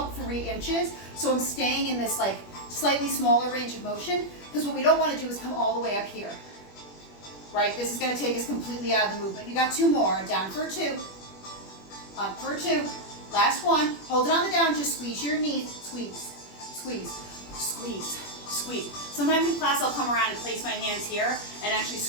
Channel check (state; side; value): late; right; 21 ms